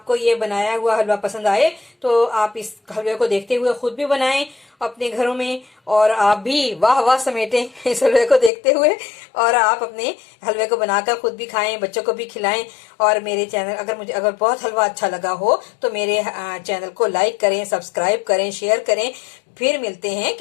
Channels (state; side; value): drops out; right; at 8.5 s